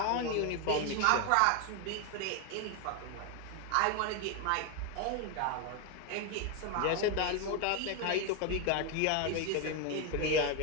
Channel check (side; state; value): both; different; correlation 0.01